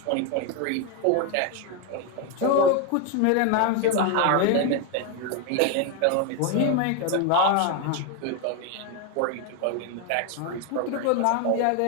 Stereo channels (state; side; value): different; both; correlation 0.01